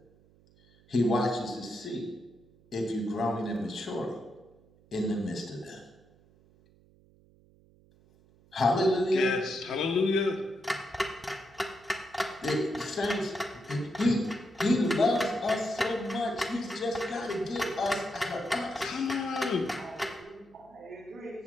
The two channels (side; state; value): right; noise; hum, 29 dB below the sound